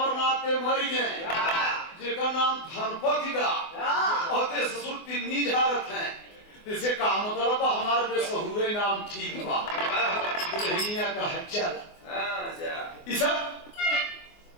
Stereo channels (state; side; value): late; right; 24 ms